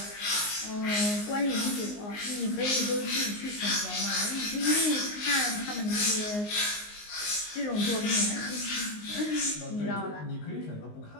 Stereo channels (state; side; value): late; right; 19 ms